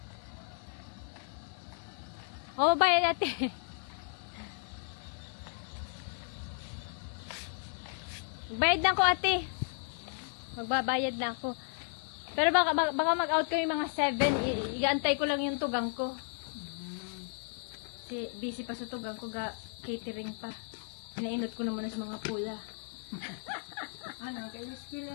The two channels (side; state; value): right; silent; 55 dB below the other